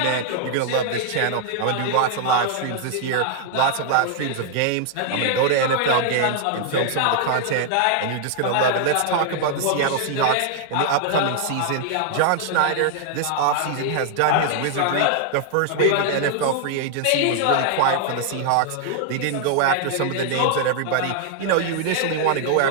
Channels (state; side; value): different; both; correlation 0.00